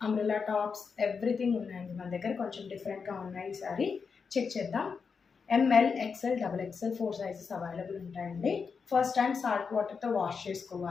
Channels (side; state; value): right; quieter; 5.6 dB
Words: umbrella tops everything ఉన్నాయండి మన దగ్గర. కొంచెం డిఫరెంట్గా ఉన్నాయి. ఈసారి చెక్ చేద్దాం. ML, XL, double XL 4 sizes available ఉంటాయండి. ఫస్ట్ టైం సాల్ట్ వాటర్తో వాష్